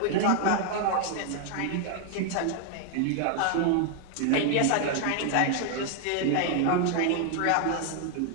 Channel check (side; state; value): both; different; correlation 0.00